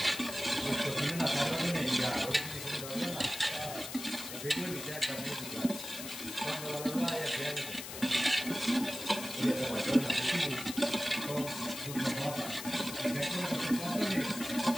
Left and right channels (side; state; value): left; noise; hiss, 9 dB below the sound